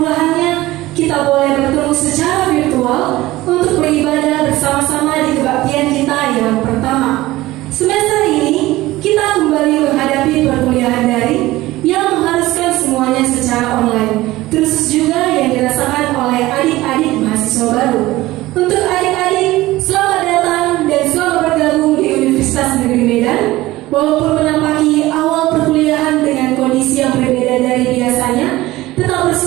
kita boleh bertemu secara virtual untuk beribadah bersama-sama di kebaktian kita yang pertama. Semester ini kita kembali menghadapi perkuliahan daring yang mengharuskan semuanya secara online, terus juga yang dirasakan oleh adik-adik mahasiswa baru. Untuk adik-adik, selamat datang dan selamat bergabung di Universitas Negeri Medan. Walaupun menampaki awal perkuliahan dengan kondisi yang berbeda dari biasanya, tetap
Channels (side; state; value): left; quieter; 17.8 dB